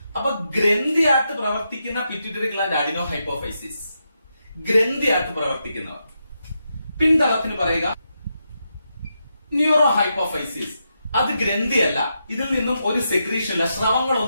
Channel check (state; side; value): inverted; both; correlation -0.84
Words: അപ്പൊ ഗ്രന്ഥിയായിട്ട് പ്രവർത്തിക്കുന്ന പിറ്റ്യൂട്ടറി ഗ്ലാൻഡ് അഡിനോ ഹൈപ്പോഫൈസിസ്, ഗ്രന്ഥിയായിട്ട് പ്രവർത്തിക്കുന്നവർ. പിന്തളത്തിന് പറയുക ന്യൂറോ ഹൈപ്പോഫൈസിസ്. അത് ഗ്രന്ഥിയല്ല, ഇതിൽ നിന്നും ഒരു സെക്രീഷൻ ഇല്ല,